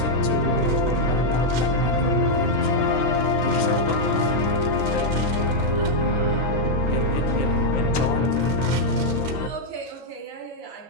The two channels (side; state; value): both; normal; correlation -0.02